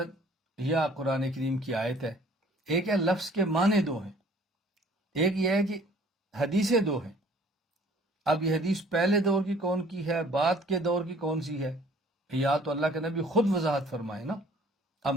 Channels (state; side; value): normal; both; correlation 0.54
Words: یا قرآن کریم کی آیت ہے، ایک ہے لفظ کے معنی دو ہیں، ایک یہ ہے کہ حدیثیں دو ہیں۔ اب یہ حدیث پہلے دور کی کون کی ہے، بعد کے دور کی کون سی ہے، یا تو اللہ کے نبی خود وضاحت فرمائے نا۔ اب